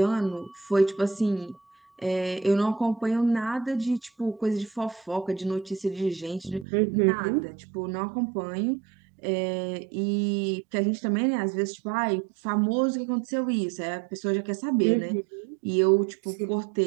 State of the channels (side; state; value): left; drops out; at 6.7 s